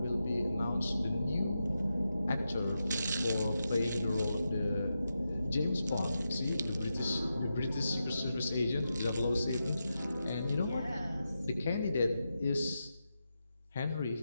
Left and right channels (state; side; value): inverted; both; correlation -0.88